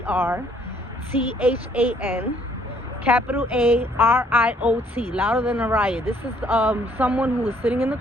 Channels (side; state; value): both; normal; correlation 0.64